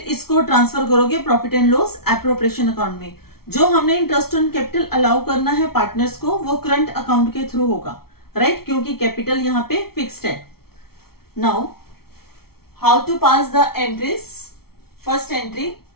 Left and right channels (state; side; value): late; right; 0.94 ms